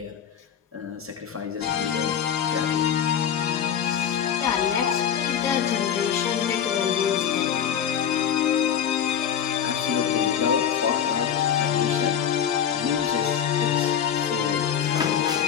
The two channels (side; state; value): right; quieter; 8.7 dB